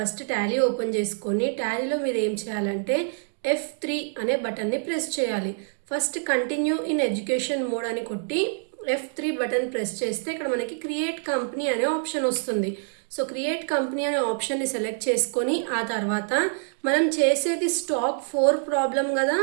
టాలీ ఓపెన్ చేసుకొని టాలీలో మీరు ఏం చేయాలంటే F3 అనే బటన్ని ప్రెస్ చేయాలి. First continue in education mode అని కొట్టి F3 బటన్ ప్రెస్ చేస్తే ఇక్కడ మనకి క్రియేట్ కంపెనీ అనే ఆప్షన్ వస్తుంది. సో క్రియేట్ కంపెనీ అనే ఆప్షన్ని సెలెక్ట్ చేసుకొని ఆ తర్వాత మనం చేసేది స్టాక్ 4 ప్రాబ్లం కదా.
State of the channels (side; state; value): left; silent; digital silence